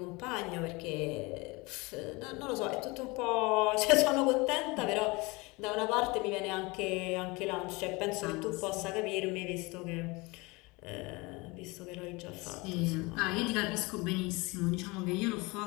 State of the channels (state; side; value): quieter; right; 25.2 dB